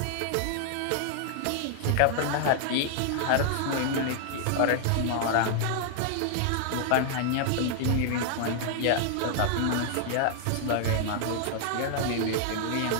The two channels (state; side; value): different; both; correlation 0.00